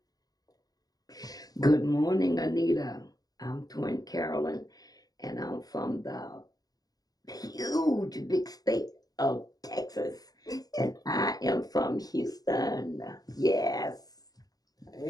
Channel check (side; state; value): right; late; 0.18 ms